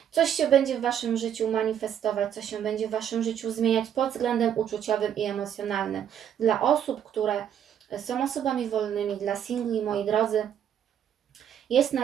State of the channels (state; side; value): quieter; left; 9.4 dB